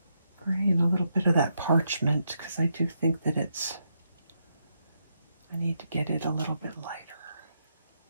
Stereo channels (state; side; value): inverted; both; correlation -0.80